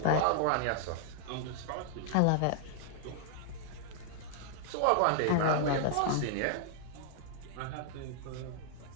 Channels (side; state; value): both; different; correlation -0.01